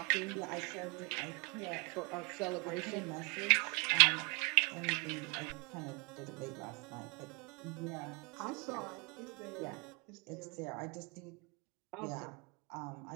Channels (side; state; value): left; quieter; 31.4 dB